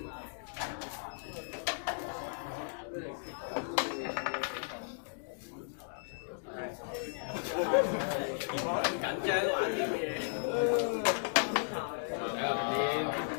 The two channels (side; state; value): right; silent; digital silence